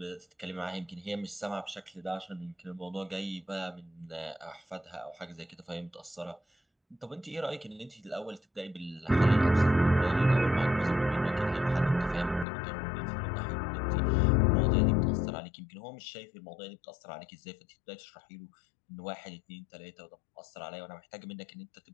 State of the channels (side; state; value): right; drops out; at 12.5 s